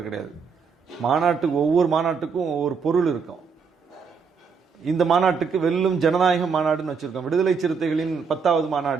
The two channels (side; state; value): left; quieter; 5.6 dB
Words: கிடையாது. மாநாட்டுக்கு ஒவ்வொரு மாநாட்டுக்கும் ஒவ்வொரு பொருள் இருக்கும். இந்த மாநாட்டுக்கு வெல்லும் ஜனநாயக மாநாடுன்னு வச்சிருக்கோம். விடுதலை சிறுத்தைகளின் 10வது